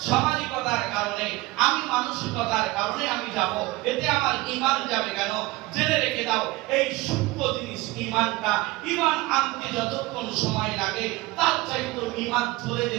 সামাজিকতার কারণে, আমি মানসিকতার কারণে আমি যাব, এতে আমার ঈমান যাবে কেন? জেনে রেখে দাও, এই সূক্ষ্ম জিনিস ঈমানটা, ঈমান আনতে যতক্ষণ সময় লাগে তার চাইতে ঈমান চলে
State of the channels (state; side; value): quieter; left; 20.7 dB